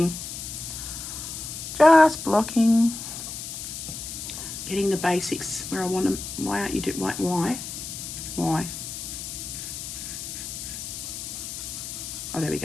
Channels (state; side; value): noise; left; hiss, 8 dB below the sound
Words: Just blocking. Getting the basics where I want them. Why aren't you doing, why? Oh, there we